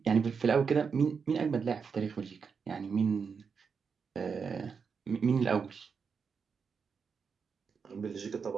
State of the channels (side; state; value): left; quieter; 5.9 dB